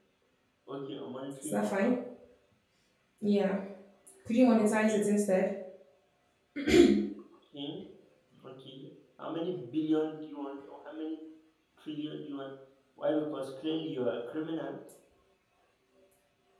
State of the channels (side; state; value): both; identical; correlation 1.00